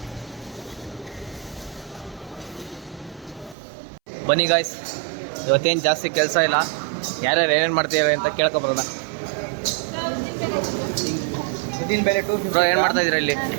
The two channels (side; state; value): left; drops out; at 3.6 s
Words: ಬನ್ನಿ ಗಾಯ್ಸ್, ಇವತ್ತೇನು ಜಾಸ್ತಿ ಕೆಲಸ ಇಲ್ಲ. ಯಾರ್ಯಾರು ಏನೇನು ಮಾಡ್ತೀವಿ ಅಂತ ಕೇಳ್ಕೊಬರೋಣ. ಬ್ರೋ, ಏನು ಮಾಡ್ತಾ ಇದ್ದೀರಾ ಇಲ್ಲಿ?